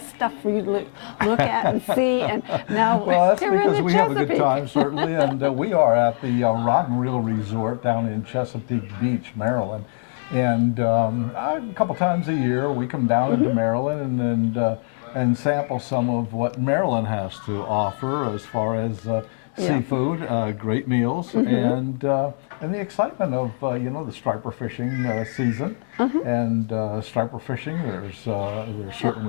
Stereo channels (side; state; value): right; silent; 64 dB below the other